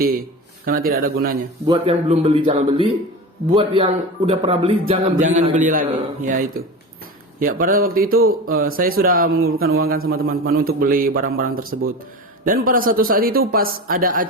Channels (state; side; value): normal; both; correlation 0.29